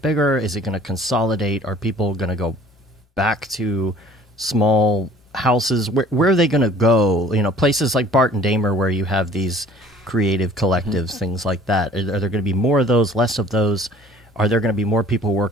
bigger? Is it going to consolidate? Are people going to go back to small houses? Where are they going to go? You know, places like Bart and Damer where you have these creative collectives, things like that. Are there going to be more of those, less of those? Are there going to be more people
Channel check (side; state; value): both; normal; correlation 0.52